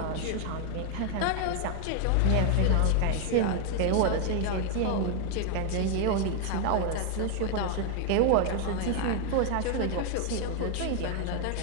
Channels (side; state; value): both; different; correlation 0.01